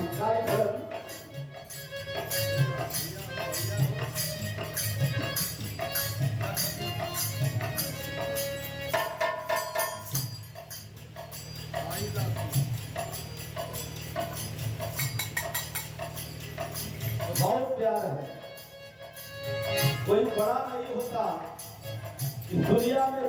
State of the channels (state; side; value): identical; both; correlation 1.00